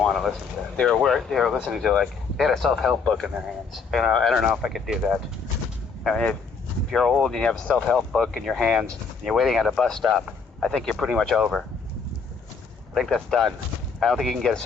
to listen to that. They were listening to, like, they had a self-help book in their hands. You know, I don't know if I could do that. I mean, if you're old and you have a self-help book in your hands and you're waiting at a bus stop, I think you're pretty much over. I think that's done. I don't think you can get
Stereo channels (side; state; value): right; quieter; 5.2 dB